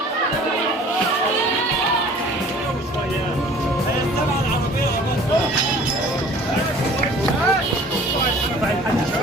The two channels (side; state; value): both; normal; correlation 0.49